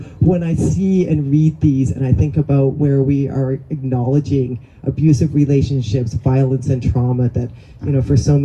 when I see and read these, and I think about where we are acknowledging abusive relationships, violence and trauma, that, for so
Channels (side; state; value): both; identical; correlation 1.00